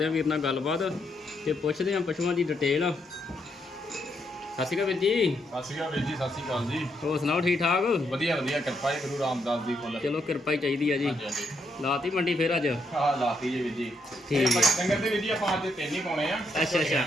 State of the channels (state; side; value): normal; both; correlation 0.77